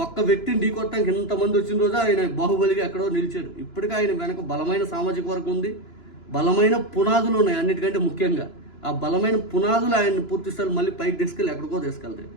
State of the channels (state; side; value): late; right; 2.9 ms